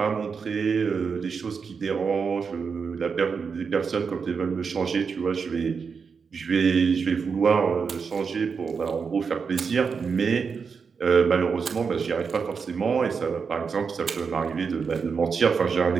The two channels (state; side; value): quieter; left; 5.7 dB